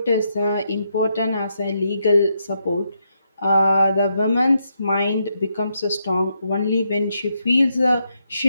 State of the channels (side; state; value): both; inverted; correlation -0.80